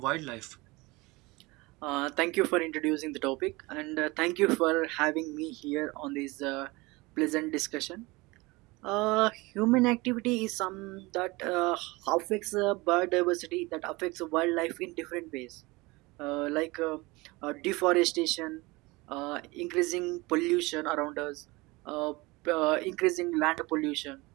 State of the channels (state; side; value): quieter; left; 23.3 dB